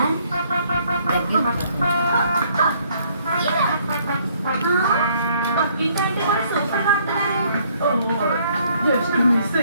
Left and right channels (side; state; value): both; inverted; correlation -0.65